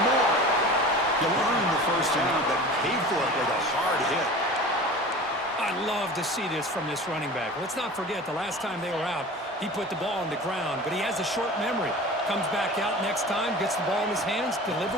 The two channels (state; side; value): normal; both; correlation 0.37